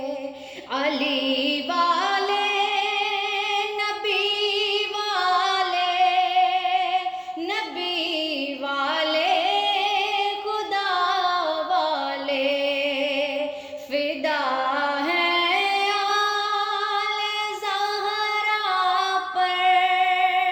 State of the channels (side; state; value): both; identical; correlation 1.00